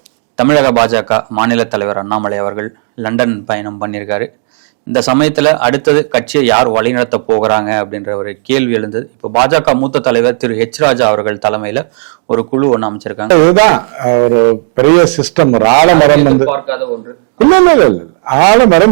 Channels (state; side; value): silent; left; 67 dB below the other